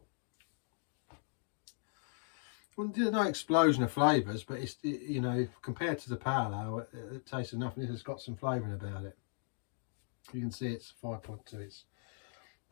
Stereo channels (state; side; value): silent; right; digital silence